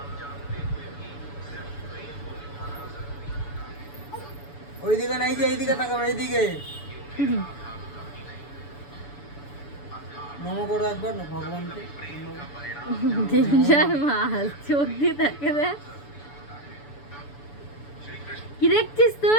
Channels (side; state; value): right; late; 7.0 ms